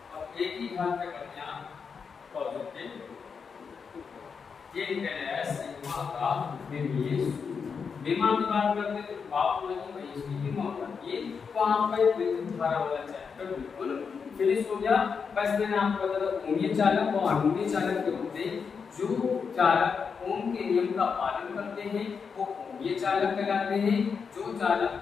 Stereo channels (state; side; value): quieter; right; 5.9 dB